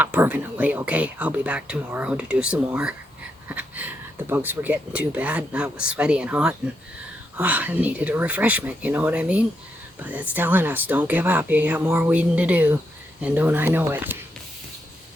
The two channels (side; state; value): both; normal; correlation 0.81